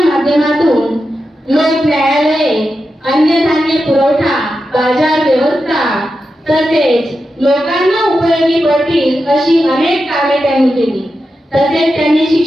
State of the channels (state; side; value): normal; both; correlation 0.89